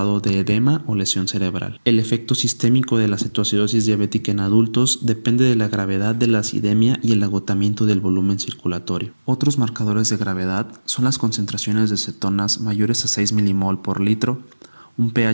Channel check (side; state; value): both; inverted; correlation -1.00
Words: de edema o lesión cerebral. El efecto sistémico de la cetoacidosis diabética en adultos depende de la gravedad de la acidemia y el agotamiento del volumen circulatorio. Otros marcadores de gravedad son las concentraciones de cetonas mayores a 6 milimol por litro, un